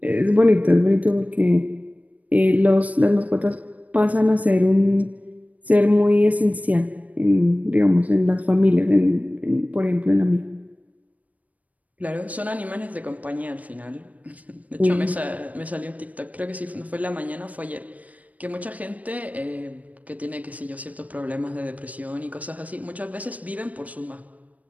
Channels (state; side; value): late; left; 0.071 ms